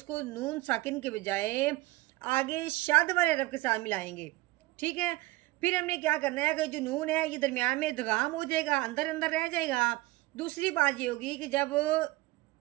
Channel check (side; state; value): left; quieter; 20.0 dB